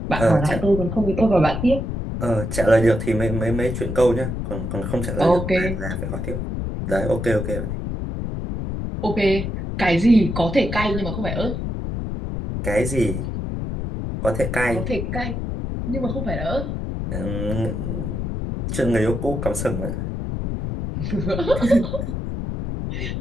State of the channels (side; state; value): left; noise; rumble, 4 dB below the sound